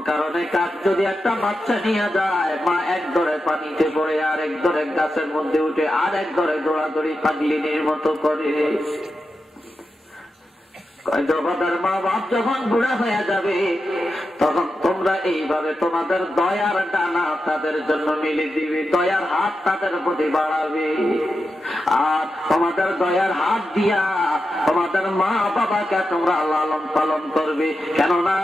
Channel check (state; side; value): normal; both; correlation 0.89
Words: কারণে কাক যদি একটা বাচ্চা নিয়ে যায়, মা এক ধরে পানিতে পড়ে, আর এক ধরে গাছের মধ্যে উঠে, আর এক ধরে দৌড়াদৌড়ি পাগলিনীর মতো করে। মা বাপ যখন বুড়া হয়ে যাবে, তখন তোমরা এইভাবে তোমাদের দয়ার ডানা তাদের জন্য মিলে দিবে, দয়ার হাত তাদের প্রতি বাড়াবে। আর তোমাদের দয়ার হাত দিয়া তোমাদের মা বাবাকে তোমরা লালন পালন করবে। কেননা